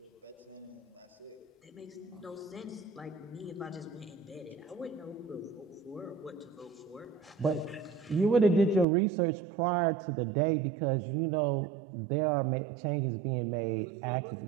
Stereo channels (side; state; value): left; drops out; at 8.8 s